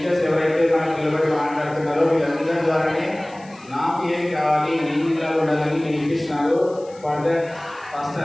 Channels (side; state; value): left; noise; hiss, 26 dB below the sound